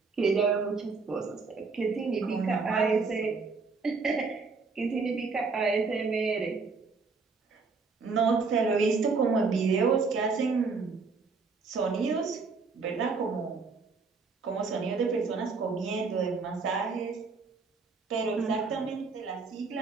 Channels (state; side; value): quieter; left; 4.5 dB